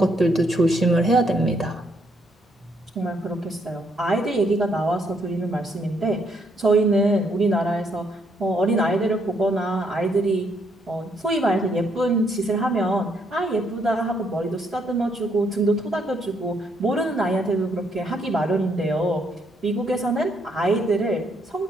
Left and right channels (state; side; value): normal; both; correlation 0.73